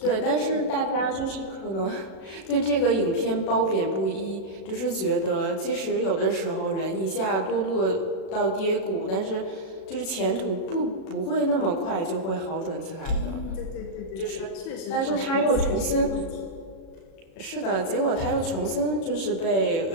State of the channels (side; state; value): right; late; 36 ms